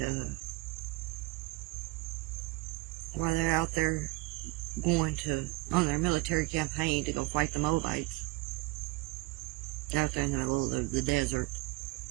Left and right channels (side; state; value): left; quieter; 21.6 dB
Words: while they're out there going on their military campaign to go fight the Moabites, they're out there in the middle of the desert,